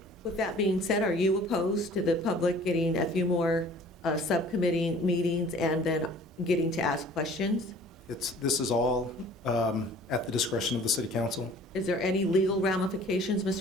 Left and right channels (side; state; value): both; normal; correlation 0.50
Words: With that being said, are you opposed to the public getting a few more subcommittee meetings and then getting to ask questions? This is all at the discretion of the city council. Is there any legal ramifications,